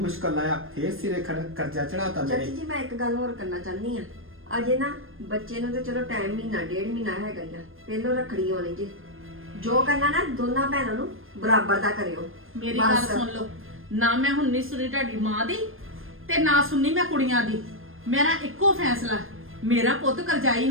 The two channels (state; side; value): late; left; 0.60 ms